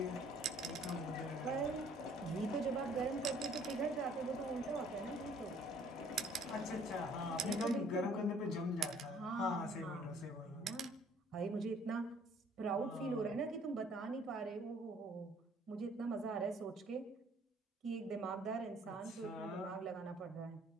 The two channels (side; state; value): both; normal; correlation 0.58